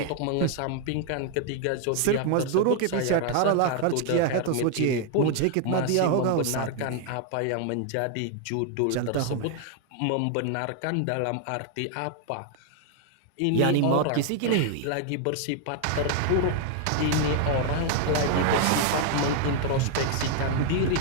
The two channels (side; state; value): both; different; correlation 0.00